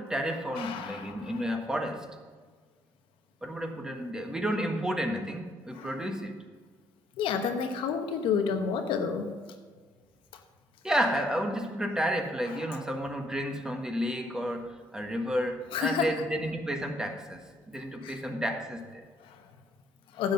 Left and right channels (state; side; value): normal; both; correlation 0.68